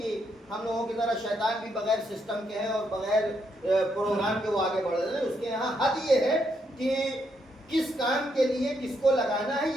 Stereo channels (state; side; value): normal; both; correlation 0.77